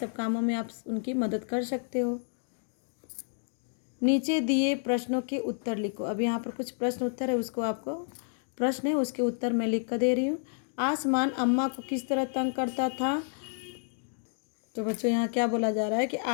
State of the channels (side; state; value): right; silent; digital silence